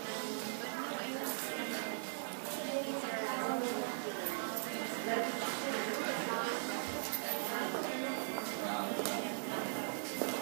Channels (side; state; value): left; silent; digital silence